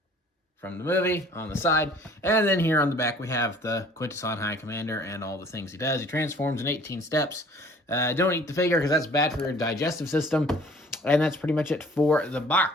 from the movie on the side. And then here on the back, we have the Quintesson High Commander and all the things he does. He transforms in 18 steps. Don't eat the figure because that's bad for your digestive system. And that's pretty much it for the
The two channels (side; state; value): both; normal; correlation 0.52